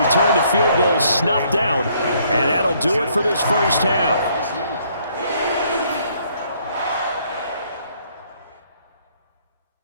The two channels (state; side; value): inverted; both; correlation -0.66